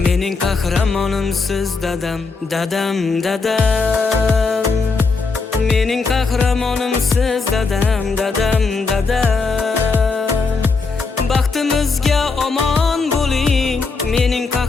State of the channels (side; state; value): right; quieter; 4.3 dB